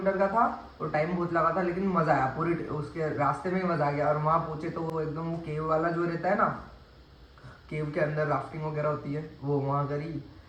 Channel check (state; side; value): identical; both; correlation 1.00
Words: का था और टाइम बहुत लगा था, लेकिन मज़ा आया। पूरी उसके रास्ते में ही मज़ा आ गया। और वहाँ पहुँचे तो वो एकदम वो केव वाला जो रहता है ना, केव के अंदर राफ्टिंग वगैरह होती है, वो वहाँ करी।